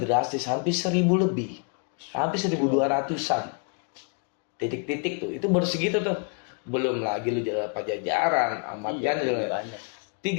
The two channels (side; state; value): right; quieter; 37.1 dB